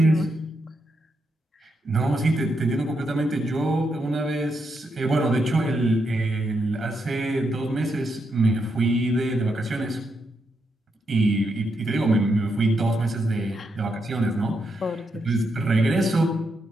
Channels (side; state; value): both; normal; correlation 0.82